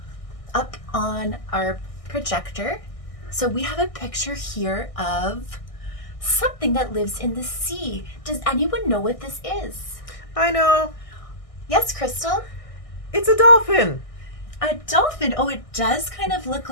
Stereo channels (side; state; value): right; late; 1.6 ms